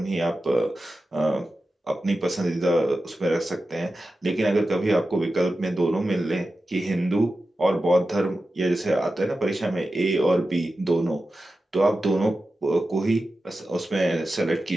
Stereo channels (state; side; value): normal; both; correlation 0.93